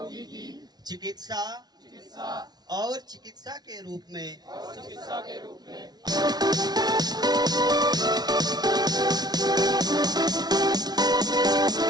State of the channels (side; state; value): left; late; 0.19 ms